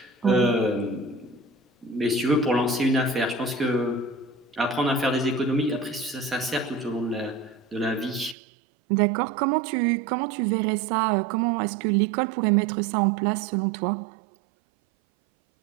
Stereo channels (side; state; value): left; drops out; at 8.3 s